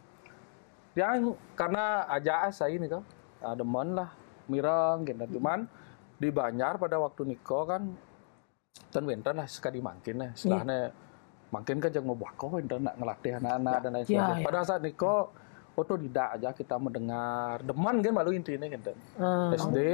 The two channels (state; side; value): silent; right; digital silence